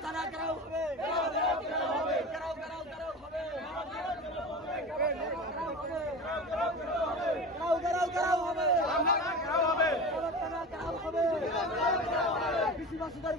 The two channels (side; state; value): both; normal; correlation 0.30